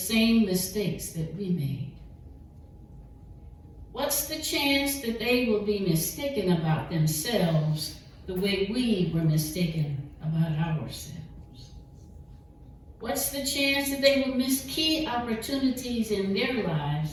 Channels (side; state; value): both; identical; correlation 1.00